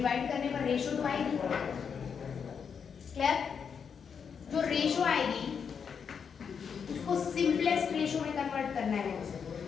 करने पर रेशो तो आएगी। क्लियर। जो रेशो आएगी उसको सिंपलेस्ट रेशो में कन्वर्ट करना है।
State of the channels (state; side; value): quieter; right; 6.7 dB